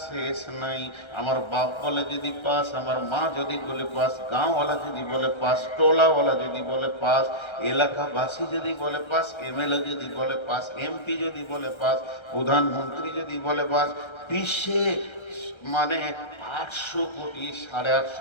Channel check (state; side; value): late; right; 1.3 ms